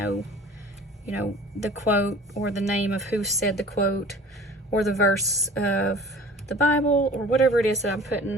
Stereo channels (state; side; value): normal; both; correlation 0.45